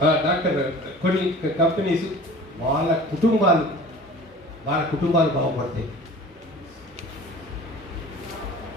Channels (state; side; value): normal; both; correlation 0.42